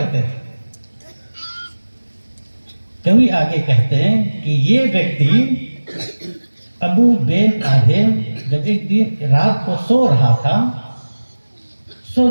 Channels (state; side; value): inverted; both; correlation -1.00